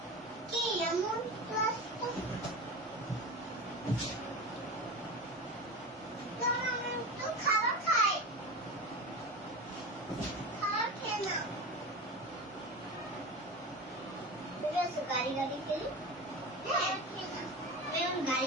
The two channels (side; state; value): both; normal; correlation 0.27